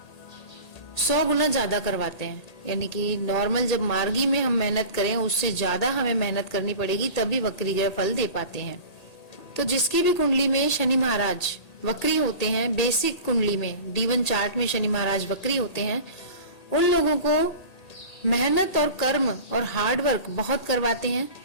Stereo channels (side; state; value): right; late; 1.8 ms